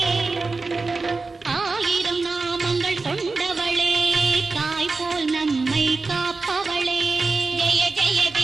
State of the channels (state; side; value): quieter; left; 3.9 dB